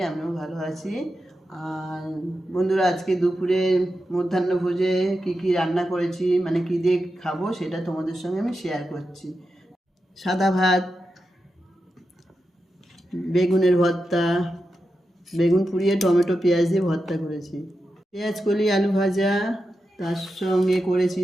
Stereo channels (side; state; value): both; normal; correlation 0.89